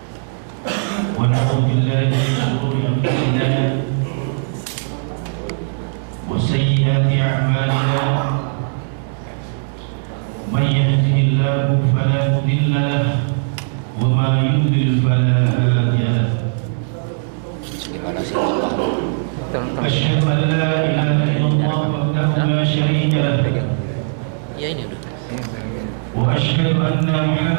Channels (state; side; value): silent; left; 62 dB below the other